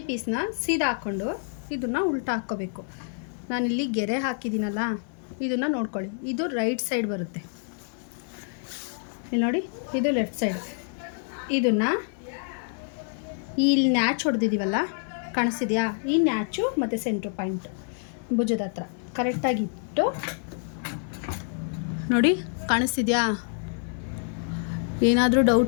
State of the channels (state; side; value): silent; right; 58 dB below the other